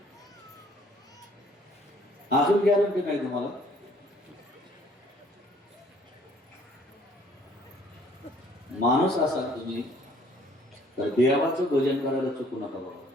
अजून गॅरंटी नाही तुम्हाला. माणूस असाल तुम्ही तर देवाचं भजन करायला चुकू नका बाबा.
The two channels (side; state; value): both; normal; correlation 0.59